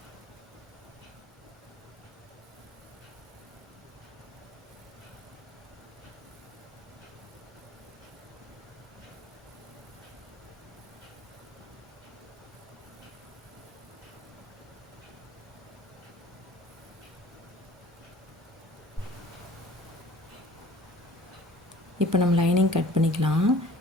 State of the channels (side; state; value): both; normal; correlation 0.49